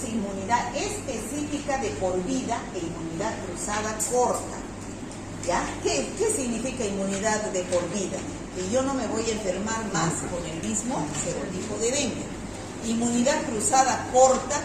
inmunidad específica de por vida e inmunidad cruzada corta. ¿Ya? ¿Qué significa inmunidad de por vida? Que yo no me voy a enfermar más con el mismo serotipo de dengue. Inmunidad cruzada corta,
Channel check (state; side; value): identical; both; correlation 1.00